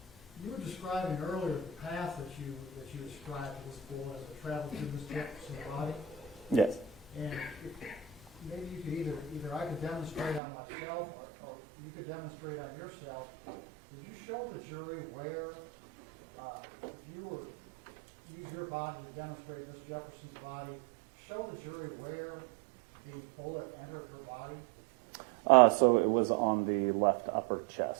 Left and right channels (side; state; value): left; drops out; at 10.4 s